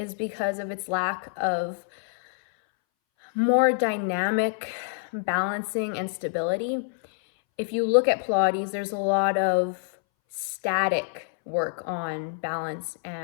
because of its lack of more dynamic balancing and stability. If you look at Pilates, there's a lot of static work on balance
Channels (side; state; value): right; silent; 61 dB below the other